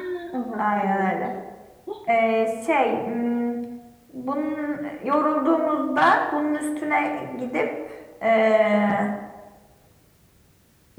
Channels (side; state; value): both; identical; correlation 1.00